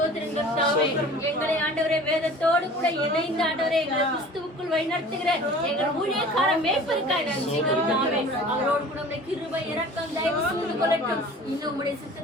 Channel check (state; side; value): normal; both; correlation 0.44